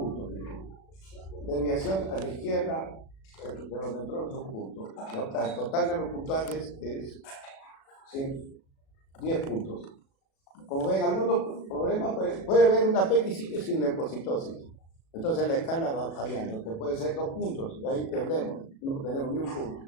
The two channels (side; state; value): right; late; 36 ms